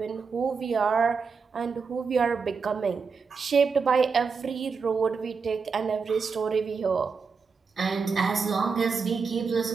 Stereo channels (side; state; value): left; quieter; 5.2 dB